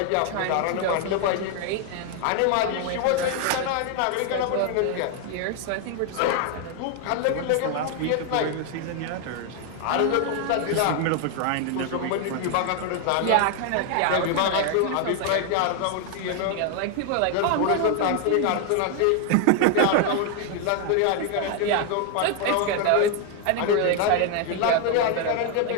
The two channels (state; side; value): different; both; correlation 0.01